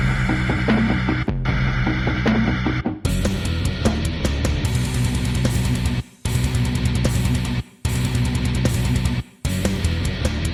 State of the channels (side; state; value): both; identical; correlation 1.00